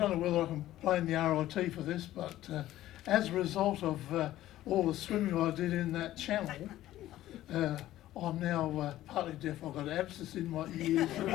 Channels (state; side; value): quieter; right; 14.3 dB